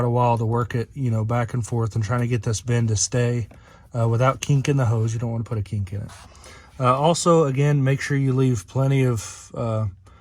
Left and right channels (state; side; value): identical; both; correlation 1.00